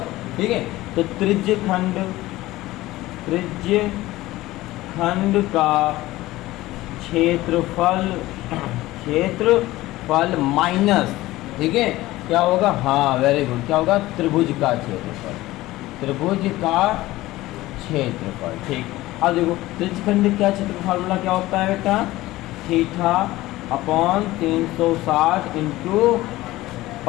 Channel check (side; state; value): right; quieter; 17.5 dB